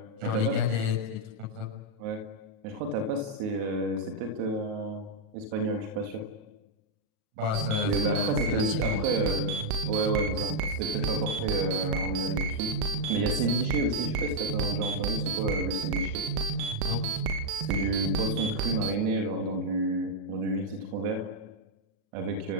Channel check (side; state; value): left; late; 38 ms